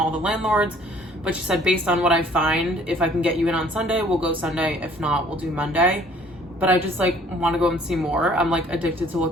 the landlords. But she said, based on what I find, if I can get you in on Sunday, we'll go Sunday. If not, we'll do Monday. But I just like want to go and see more. I'm like addicted to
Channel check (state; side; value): normal; both; correlation 0.56